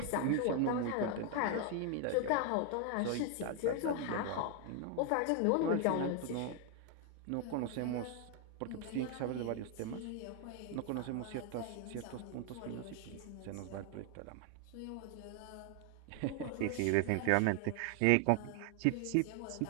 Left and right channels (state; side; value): different; both; correlation 0.00